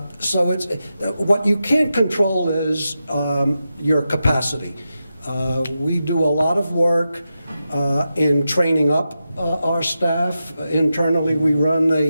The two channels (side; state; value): both; inverted; correlation -0.90